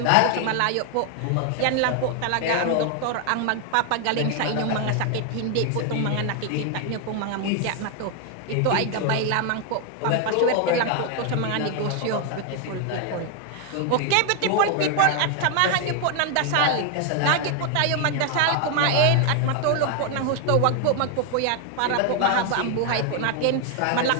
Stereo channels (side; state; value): both; different; correlation 0.00